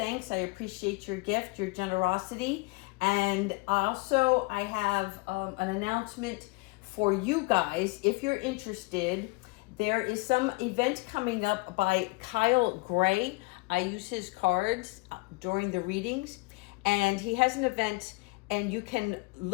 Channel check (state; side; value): quieter; right; 25.9 dB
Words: I appreciate your gift, your generosity. And also I have an announcement for you guys. If you're interested, there is some event coming up by Kyle Gray. I use his cards during the readings, and he has an event, and you can